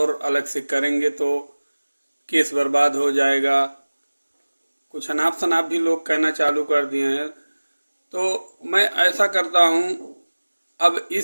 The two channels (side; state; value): both; inverted; correlation -1.00